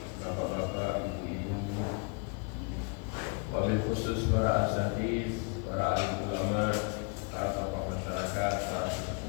bapak-bapak, ibu-ibu, wabil khusus para asatiz, para alim ulama, para tokoh masyarakat, para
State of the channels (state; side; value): quieter; right; 35.0 dB